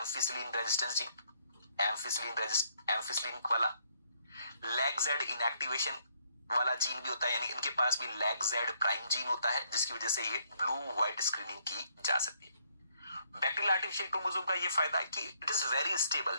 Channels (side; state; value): both; inverted; correlation -0.69